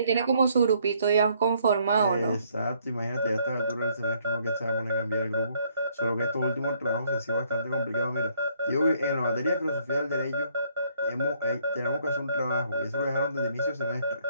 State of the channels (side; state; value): both; inverted; correlation -0.67